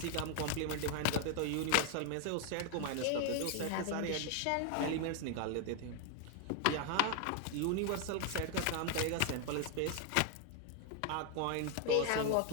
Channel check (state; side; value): different; both; correlation 0.00